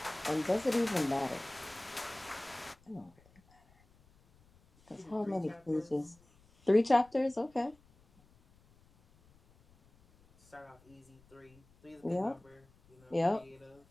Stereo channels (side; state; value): left; noise; rumble, 30 dB below the sound